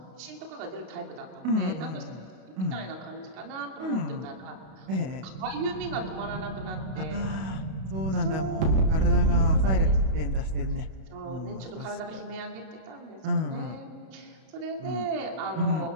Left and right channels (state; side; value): late; left; 32 ms